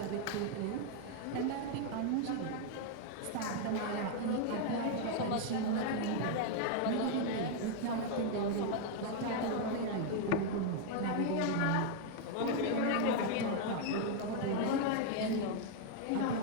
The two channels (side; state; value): both; different; correlation 0.00